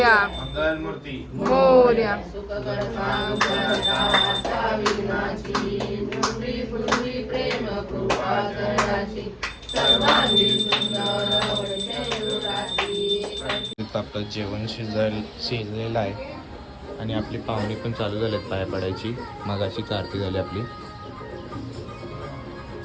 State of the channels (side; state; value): both; identical; correlation 1.00